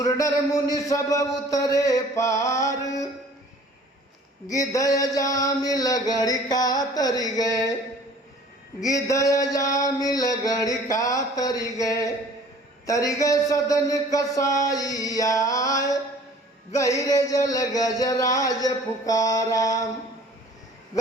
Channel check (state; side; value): normal; both; correlation 0.50